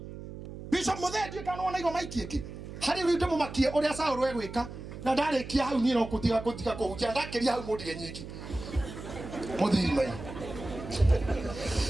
Bishop Modedi kanaona igo maikieki. Hari rute mu makie oria Saul wegwika na ndare kia hau niro kutika kuhunjia ndakeria hau mudige nyiki. Muthiri mai.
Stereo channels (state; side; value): noise; right; hum, 11 dB below the sound